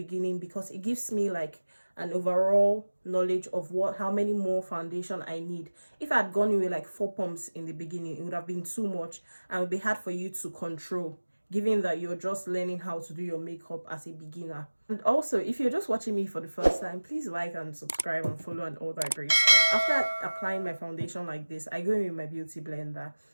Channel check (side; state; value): both; inverted; correlation -1.00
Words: because it gives me like an overall knowledge of how many more foundation I need. If I had gone in with like 4 pumps in the beginning, it would have been too much and it would be hard for you to control, given that you're just learning how to do your makeup as a beginner. And also, if you're just watching me for the first time, please like and subscribe and follow and all that great stuff. After applying my foundation like this, I go in with my beauty blender.